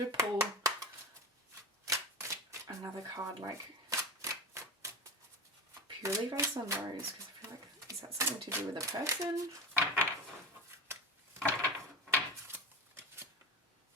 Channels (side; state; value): both; normal; correlation 0.26